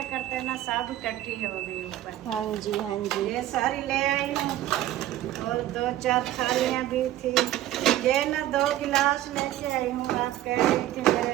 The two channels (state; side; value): quieter; left; 13.7 dB